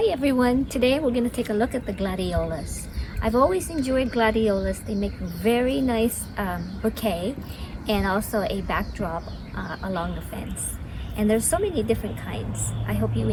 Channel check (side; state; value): both; identical; correlation 1.00